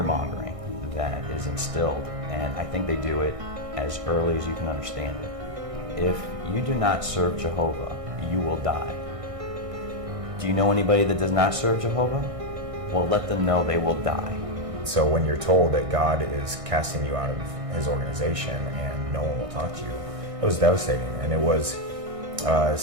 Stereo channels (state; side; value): late; left; 1.6 ms